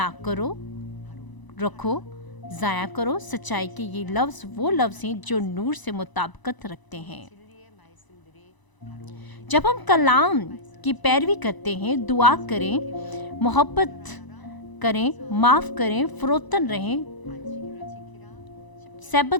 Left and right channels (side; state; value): right; late; 1.0 ms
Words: करो, रखो, ज़ाया करो। सच्चाई के ये लफ्ज़ वो लफ्ज़ हैं जो नूर से मुताबिकत रखते हैं। जब हम कलाम की पैरवी करते हैं, दुआ करें, मोहब्बत करें, माफ़ करें, फरोतन रहें,